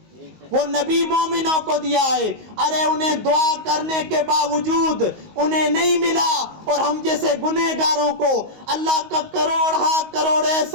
وہ نبی مومنوں کو دیا ہے. ارے انہیں دعا کرنے کے باوجود انہیں نہیں ملا, اور ہم جیسے گنہگاروں کو اللہ کا کروڑ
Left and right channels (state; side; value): late; left; 19 ms